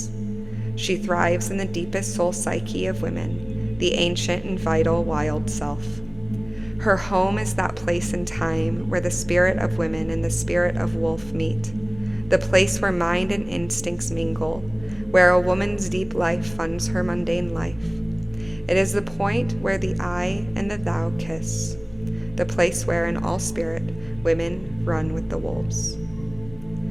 She thrives in the deepest soul psyche of women, the ancient and vital wild self. Her home is that place in time where the spirit of women and the spirit of wolf meet, the place where mind and instincts mingle, where a woman's deep life funds her mundane life. It is the point where the I and the thou kiss, the place where in all spirit women run with the wolves.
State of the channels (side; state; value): left; noise; rumble, 21 dB below the sound